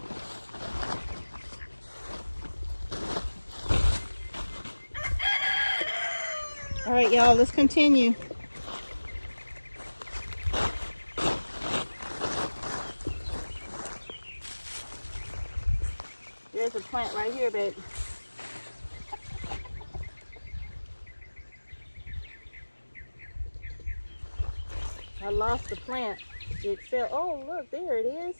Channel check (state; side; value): inverted; both; correlation -1.00